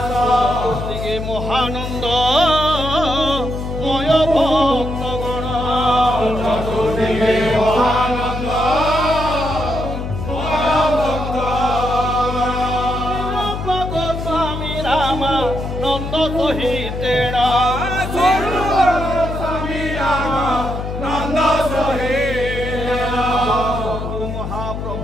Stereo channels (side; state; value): left; noise; hum, 6 dB below the sound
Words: দিকে মহানন্দ ময় ভক্তগণ চতুর্দিকে মহানন্দ গোস্বামী রামা নন্দ সহিতেণ স্বামী রামা নন্দ সহিতেণ